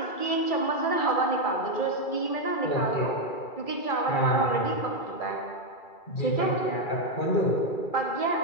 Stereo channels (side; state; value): right; late; 2.3 ms